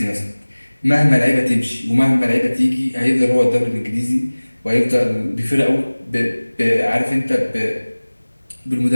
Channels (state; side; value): inverted; both; correlation -1.00